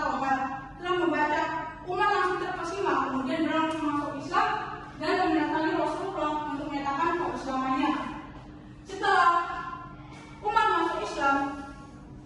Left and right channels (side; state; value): both; identical; correlation 1.00